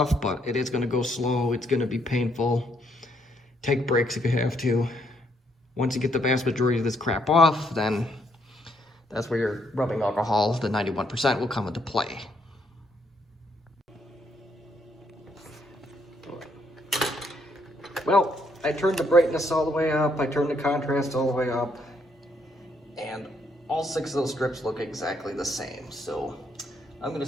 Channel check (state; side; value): normal; both; correlation 0.72